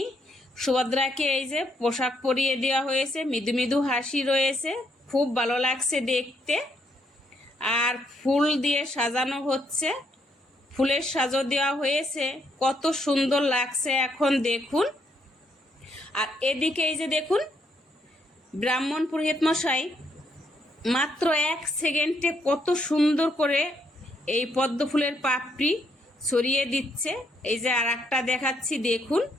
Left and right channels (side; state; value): both; normal; correlation 0.74